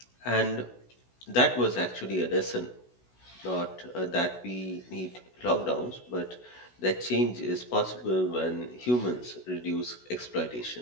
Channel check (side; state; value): right; late; 16 ms